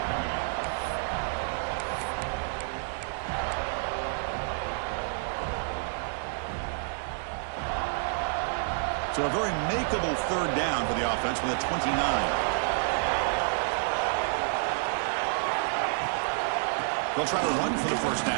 So a very makeable third down for the offense with a 29. They'll try to run for the first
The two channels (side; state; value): left; silent; digital silence